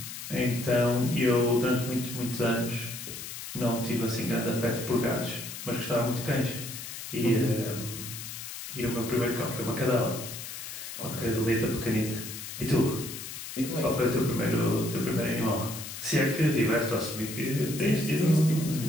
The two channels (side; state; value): left; noise; hiss, 9 dB below the sound